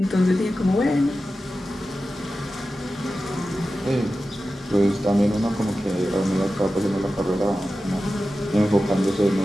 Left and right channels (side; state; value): both; normal; correlation 0.93